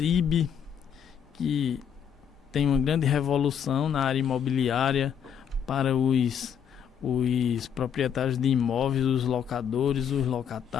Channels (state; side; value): quieter; right; 8.1 dB